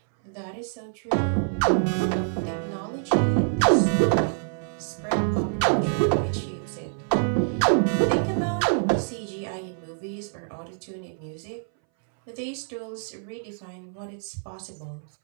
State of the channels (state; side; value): silent; left; 61 dB below the other